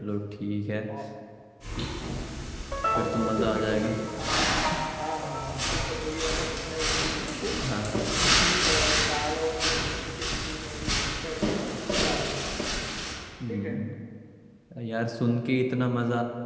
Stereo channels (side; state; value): both; identical; correlation 1.00